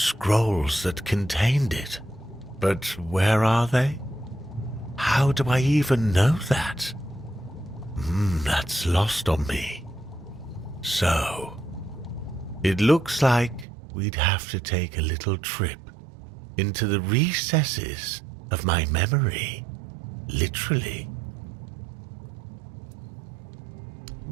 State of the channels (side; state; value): left; drops out; at 13.7 s